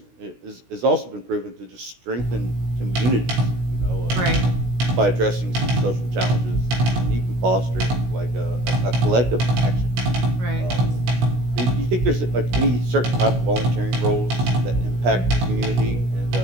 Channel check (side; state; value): left; late; 16 ms